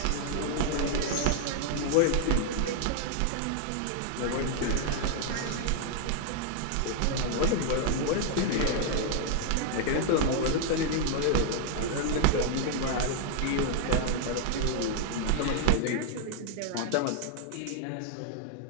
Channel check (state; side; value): different; both; correlation 0.00